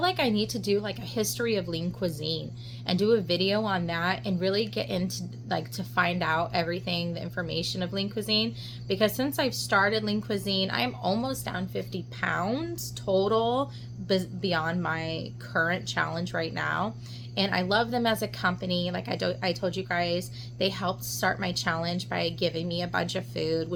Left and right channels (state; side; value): identical; both; correlation 1.00